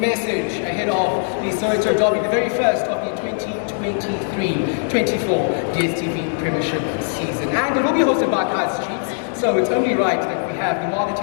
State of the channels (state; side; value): silent; right; digital silence